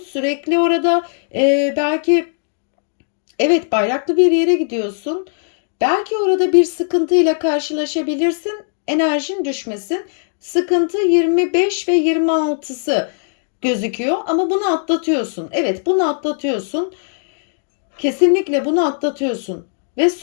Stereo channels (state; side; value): silent; right; digital silence